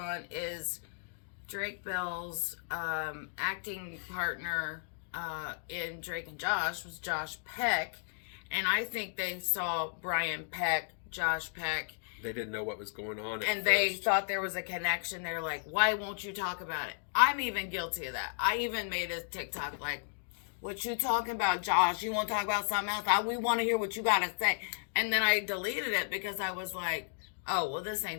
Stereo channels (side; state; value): right; silent; digital silence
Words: is Drake Bell's acting partner in Drake and Josh was Josh Peck, and I think they saw Brian Peck, Josh Peck. They didn't know what was going on at and first. They thought there was a connection. They're like, why won't you talk about it? I'm even guilty of that. I even made a TikTok like, what you talking about, Josh? You want to talk about something else? We want to hear what you got to say. And then I deleted it because I was like, oh, well, this